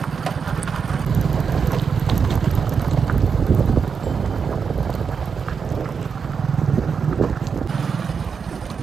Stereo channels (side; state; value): left; quieter; 6.1 dB